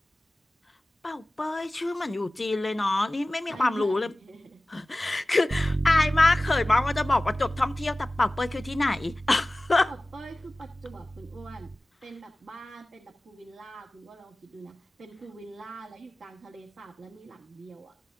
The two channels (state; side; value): normal; both; correlation 0.97